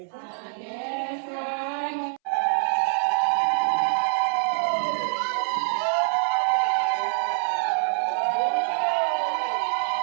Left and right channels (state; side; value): silent; left; 62 dB below the other